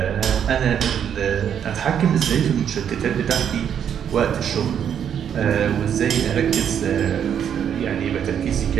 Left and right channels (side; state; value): left; quieter; 8.6 dB